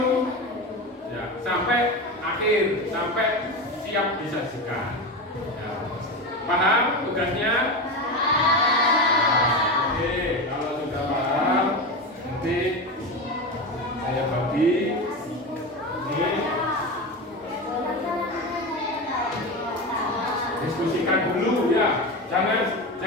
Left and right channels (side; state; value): both; normal; correlation 0.21